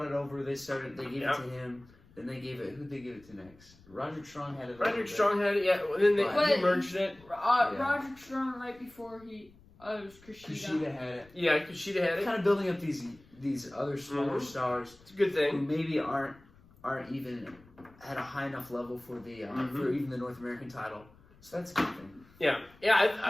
it over. They gave it to him. Then they gave it. Who'd they give it to next? Roderick Strong had it. Roderick Strong had it. Yeah. Then they merged it. Roderick Strong right before it was Kushida. Kushida had it. Yeah, Kushida had it. Kind of building up these other smaller stars. It's a good Who thing. maybe aren't even at a high enough level for the for even the North American title. So that's a good thing. Yeah.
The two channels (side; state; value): left; noise; rumble, 26 dB below the sound